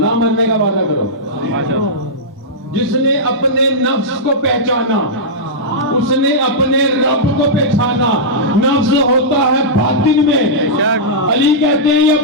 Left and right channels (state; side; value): normal; both; correlation -0.12